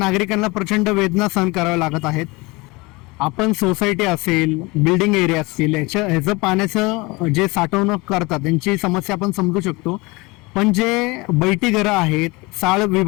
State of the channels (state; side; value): quieter; right; 24.4 dB